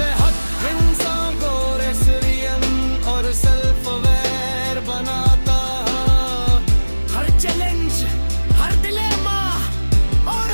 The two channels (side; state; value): both; inverted; correlation -1.00